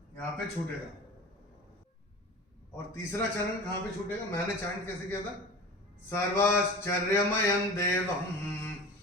यहाँ पे छूटेगा और तीसरा चरण कहाँ पे छूटेगा? मैंने चैंट कैसे किया था? सर्वाश्चर्यमयं देवम्।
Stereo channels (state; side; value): normal; both; correlation 0.35